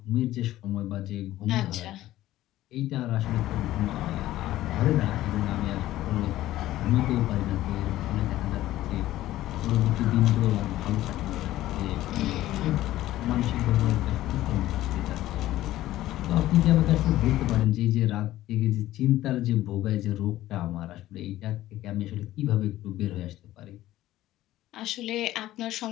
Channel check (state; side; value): quieter; right; 14.9 dB